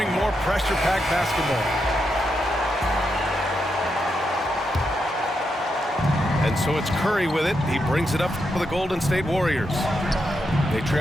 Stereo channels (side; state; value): both; normal; correlation 0.83